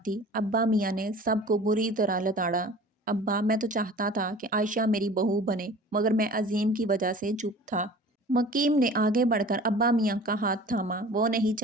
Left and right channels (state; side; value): normal; both; correlation 0.43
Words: ابا میاں نے سب کو بری طرح لتاڑا۔ ابا، میں تو چاہتا تھا کہ عائشہ میری بہو بنے، مگر میں عظیم کی وجہ سے چپ تھا۔ مکیم نے آگے بڑھ کر ابا میاں کا ہاتھ تھاما۔ وہ نہیں